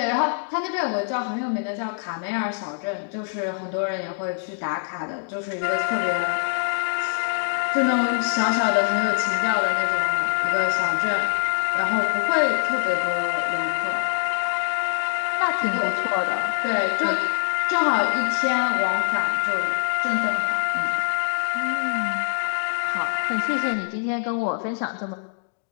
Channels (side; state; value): right; silent; digital silence